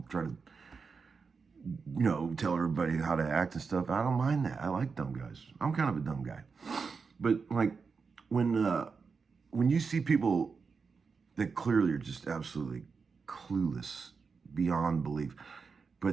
try to tell everybody how to act and stuff. I don't mind that. I like dumb guys. I'm kind of a dumb guy. But like when you see people that clearly are just absolutely clueless beyond belief,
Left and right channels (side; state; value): left; quieter; 5.1 dB